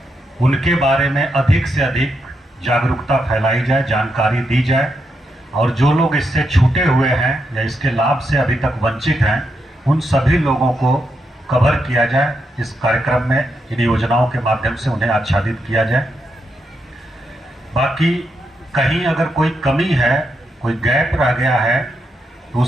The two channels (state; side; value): normal; both; correlation 0.82